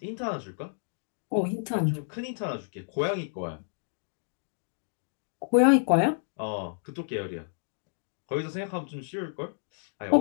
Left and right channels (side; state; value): right; silent; digital silence